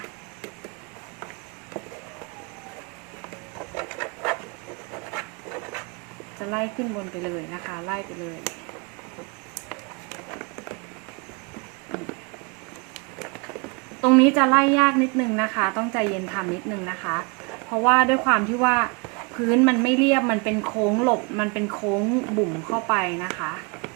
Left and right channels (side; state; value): left; quieter; 31.0 dB